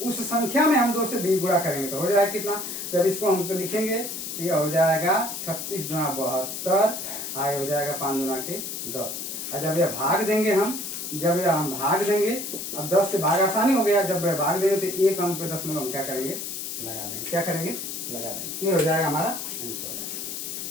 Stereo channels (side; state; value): left; noise; hiss, 6 dB below the sound